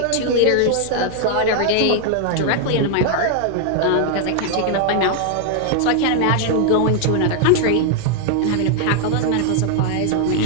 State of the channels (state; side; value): different; both; correlation 0.00